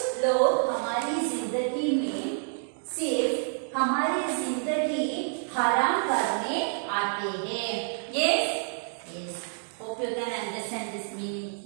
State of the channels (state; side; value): silent; left; 59 dB below the other